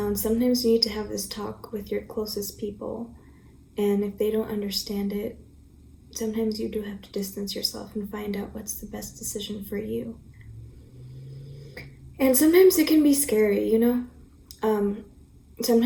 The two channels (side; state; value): both; identical; correlation 1.00